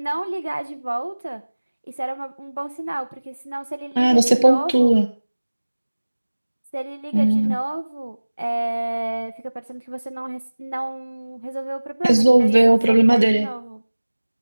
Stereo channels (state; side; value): inverted; both; correlation -1.00